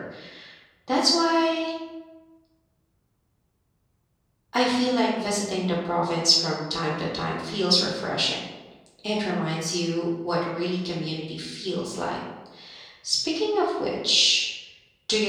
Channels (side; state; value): both; identical; correlation 1.00